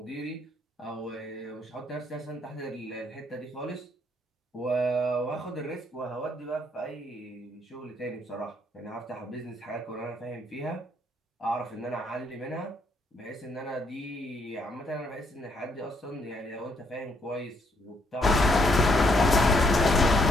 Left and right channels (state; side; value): normal; both; correlation 0.71